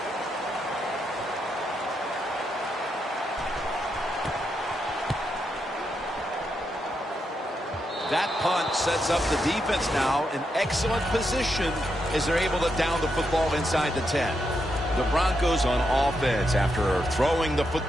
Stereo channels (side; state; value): both; normal; correlation 0.82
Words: That punt sets up the defense now in excellent position as they're able to down the football inside the 10. The Broncos on offense after throwing the